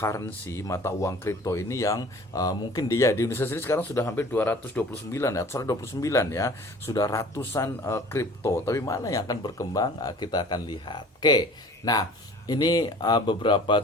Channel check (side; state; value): both; normal; correlation 0.46